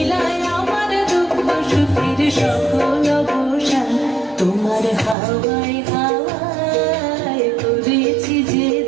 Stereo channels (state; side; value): drops out; left; at 5.2 s